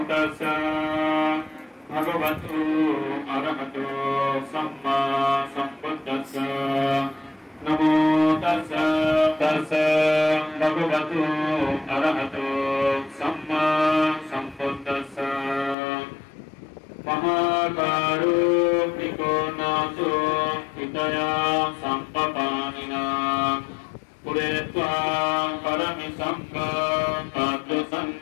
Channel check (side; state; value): right; drops out; at 15.8 s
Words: tassa bhagavato arahato samma sambuddhassa namo tassa bhagavato arahato samma sambuddhassa Mahakaruhniko naso hidaya sampapanina puretva paramisangha kadya